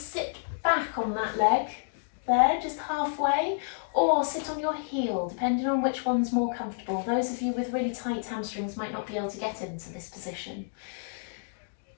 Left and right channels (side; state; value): right; silent; digital silence